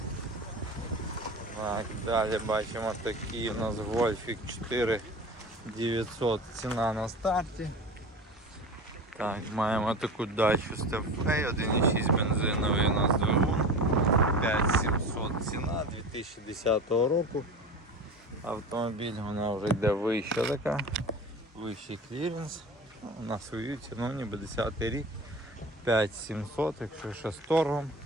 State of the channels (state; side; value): normal; both; correlation 0.33